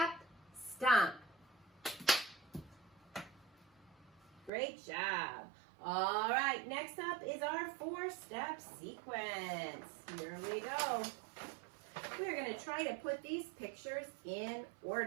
stomp. Great job. All right, next up is our 4-step sequence. Here we go. We're going to try to put these pictures in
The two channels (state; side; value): drops out; left; at 4.5 s